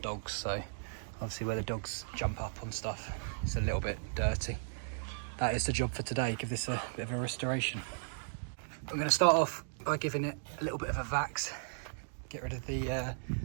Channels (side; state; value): left; silent; digital silence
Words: dogs, so obviously where the dogs jump up on stuff, it's a little bit dirty. That is the job for today, give this a bit of a restoration. I'm going to start off by giving it a little bit of a vax, get rid of the